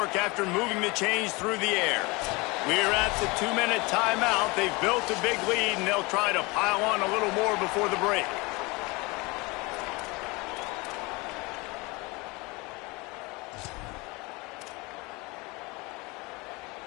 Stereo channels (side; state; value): right; quieter; 25.4 dB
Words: after moving the chains through the air. We're at the 2-minute timeout. They've built a big lead, and they'll try to pile on a little more before the break.